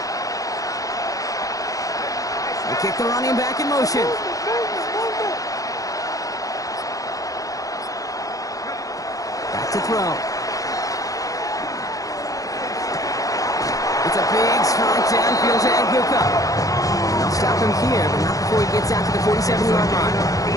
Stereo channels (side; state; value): right; late; 0.17 ms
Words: They kick the running back in motion. To throw. It's a big strike downfield to Bucca. They'll stop him here, but not before he gets out to the 47-yard line.